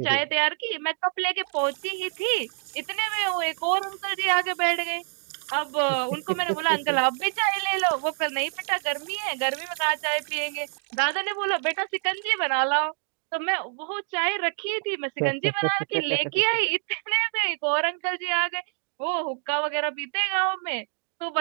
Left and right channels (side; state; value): left; silent; 56 dB below the other